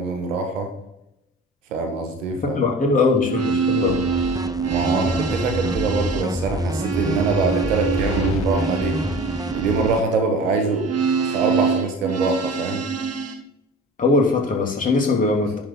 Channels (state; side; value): normal; both; correlation 0.39